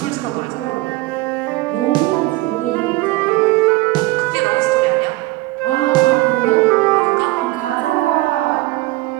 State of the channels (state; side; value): quieter; left; 19.7 dB